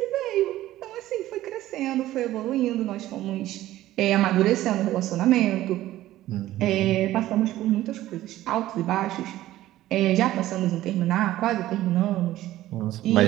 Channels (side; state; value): left; quieter; 14.8 dB